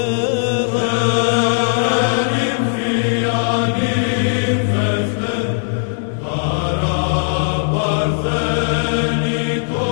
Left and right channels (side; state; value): right; silent; digital silence